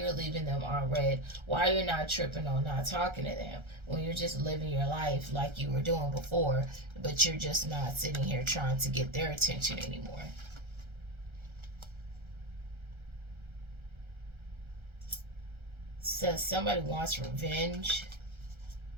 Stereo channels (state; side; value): late; left; 1.3 ms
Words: leaving them on red, why you're not tripping on not talking to them when you're just living your life like you were doing before, but you're just not sitting here trying to get their attention anymore. Says somebody wants revenge.